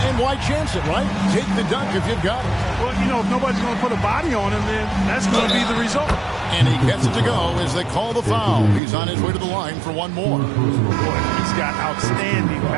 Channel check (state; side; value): drops out; left; at 8.8 s